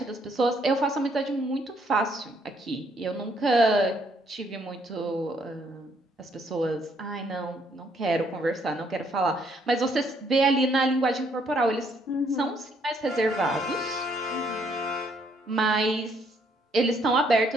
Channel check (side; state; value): both; normal; correlation 0.69